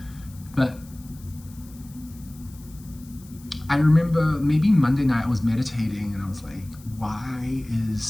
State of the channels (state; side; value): noise; left; hiss, 24 dB below the sound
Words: But I remember maybe Monday night I was meditating, and I was like, why is